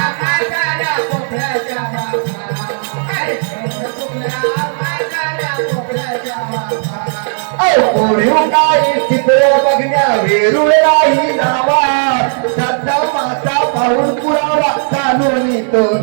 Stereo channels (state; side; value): silent; left; digital silence